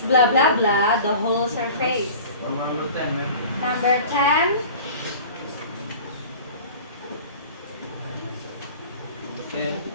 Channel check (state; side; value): inverted; both; correlation -0.41